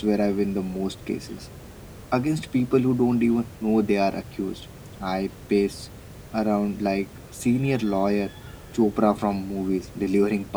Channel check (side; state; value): both; identical; correlation 1.00